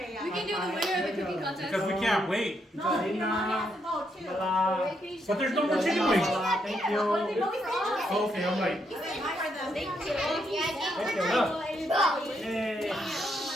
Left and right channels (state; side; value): normal; both; correlation 0.77